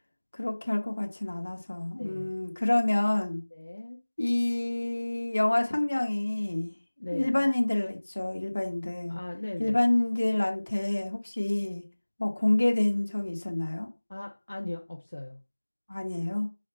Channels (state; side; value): inverted; both; correlation -1.00